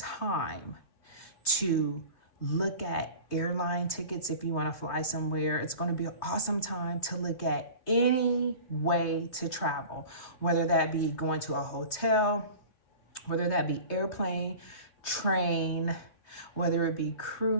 to look at airline tickets if you want to fly somewhere. It's going to be an awesome time to look at any way to travel, whether that be going to a hotel, whether that be airplane, train, whether it be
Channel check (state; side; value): late; right; 3.2 ms